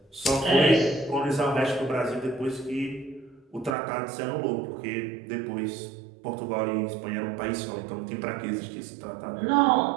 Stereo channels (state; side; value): drops out; left; at 3.8 s